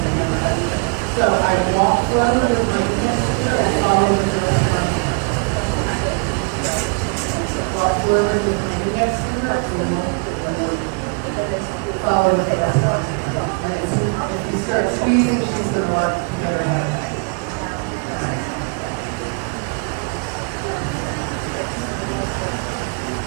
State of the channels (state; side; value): quieter; left; 37.4 dB